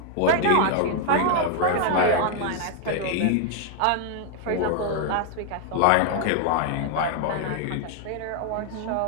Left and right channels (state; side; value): different; both; correlation 0.00